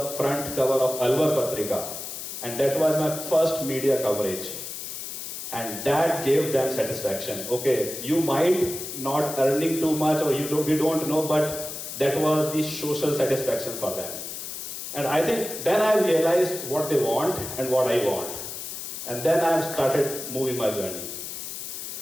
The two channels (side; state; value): left; noise; hiss, 8 dB below the sound